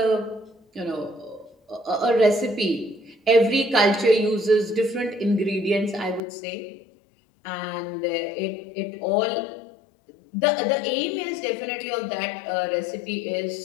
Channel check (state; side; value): drops out; right; at 6.2 s